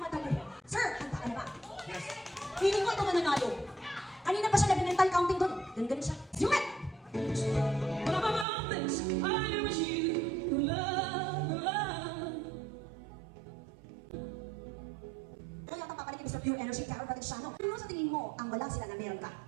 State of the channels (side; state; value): left; drops out; at 8.5 s